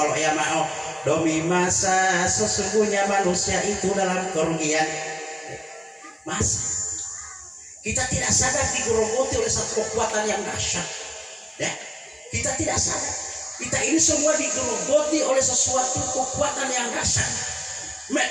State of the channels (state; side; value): identical; both; correlation 1.00